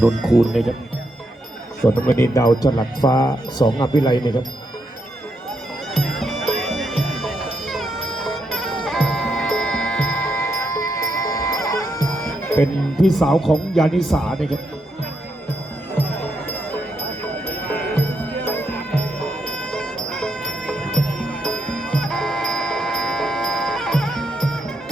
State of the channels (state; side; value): normal; both; correlation 0.80